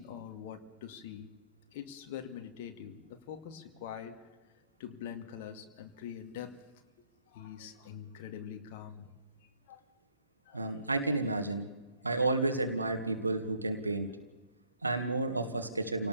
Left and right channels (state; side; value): inverted; both; correlation -0.66